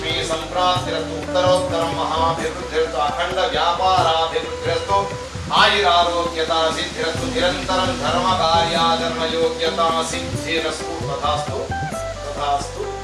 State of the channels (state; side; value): identical; both; correlation 1.00